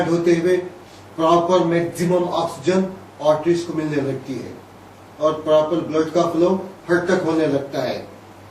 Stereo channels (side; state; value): both; identical; correlation 1.00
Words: होते हुए प्रॉपर मैक्सिमम ऑक्सीजन आर्टरीज को मिलने लगती है और प्रॉपर ब्लड का फ्लो हर तक होने लगता है।